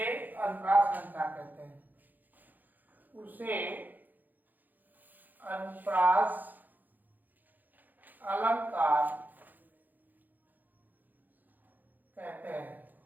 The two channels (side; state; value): left; late; 0.085 ms